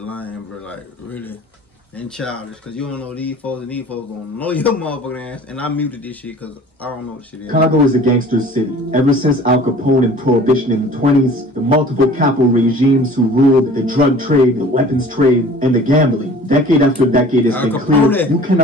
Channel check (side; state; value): both; normal; correlation 0.46